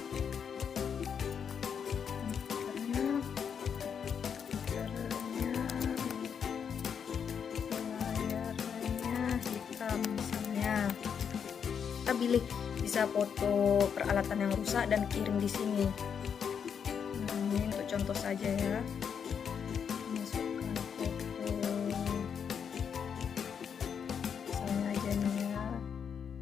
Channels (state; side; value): quieter; right; 7.3 dB